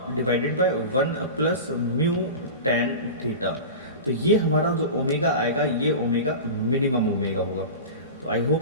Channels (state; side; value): inverted; both; correlation -0.30